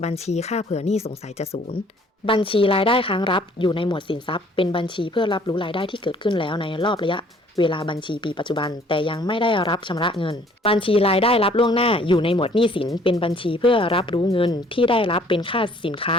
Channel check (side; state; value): both; normal; correlation 0.58